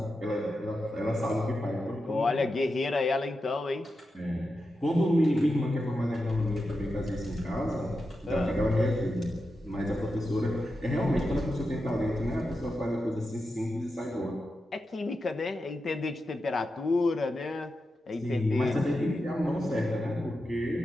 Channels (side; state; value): both; normal; correlation 0.89